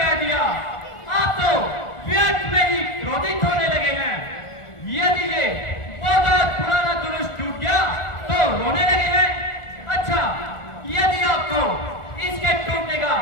दिया, आप तो व्यर्थ में ही क्रोधित होने लगे हैं। यदि ये बहुत पुराना जुलूस टूट गया तो रोने लगे हैं। अच्छा, यदि आपको इसके टूटने का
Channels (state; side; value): late; right; 1.4 ms